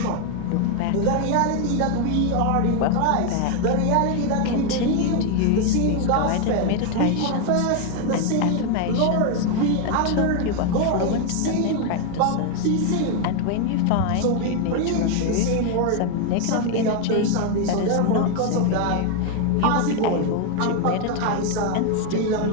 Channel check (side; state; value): both; different; correlation 0.01